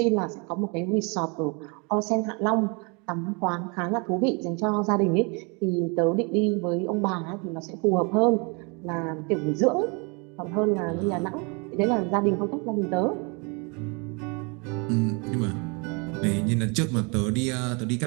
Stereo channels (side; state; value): left; quieter; 32.1 dB